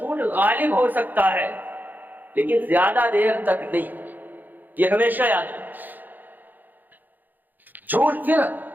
غالب ہو سکتا ہے، لیکن زیادہ دیر تک نہیں، یہ ہمیشہ یاد رکھنا۔ جھوٹ پھر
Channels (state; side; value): late; left; 0.086 ms